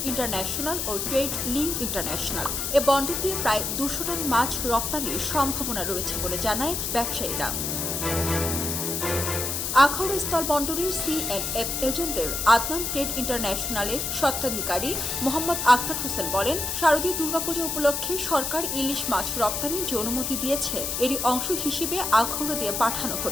ইন্টারন্যাশনাল ও ট্রেড লিঙ্ক ইন্টারন্যাশনাল। এ বন্দর দিয়ে প্রায় 200 টন মাছ রপ্তানির সম্ভাবনা রয়েছে বলে জানায় ব্যবসায়ীরা। আখাউড়া স্থলবন্দরের C&F এজেন্টদের আদনান ট্রেড ইন্টারন্যাশনালের স্বত্বাধিকারী মোহাম্মদ আক্তার হোসেন বলেন, শারদীয় দুর্গাপূজা উপলক্ষে সরকার ইলিশ মাছ রপ্তানির যে অনুমতি দিয়েছে, এরই অংশ হিসেবে আখাউড়া দিয়ে পাঠানো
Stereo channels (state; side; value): noise; left; hiss, 2 dB below the sound